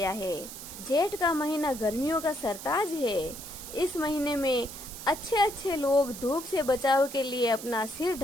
है। जेठ का महीना गर्मियों का सरताज है। इस महीने में अच्छे लोग धूप से बचाव के लिए अपना सिर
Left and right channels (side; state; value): right; noise; hiss, 12 dB below the sound